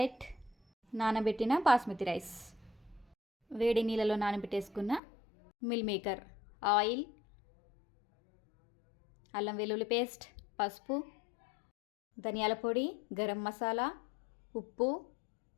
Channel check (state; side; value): drops out; right; at 5.0 s